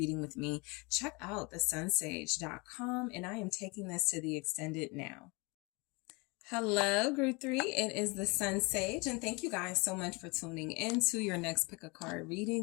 with me, check out TheSunSage.com, and I am taking this to the extended now. Hello, group 3. It is the Sun Sage, and thank you guys so much for tuning in to your next pick a card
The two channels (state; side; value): quieter; right; 27.9 dB